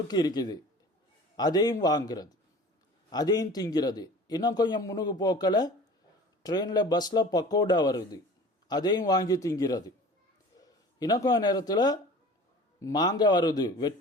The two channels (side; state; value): both; normal; correlation 0.42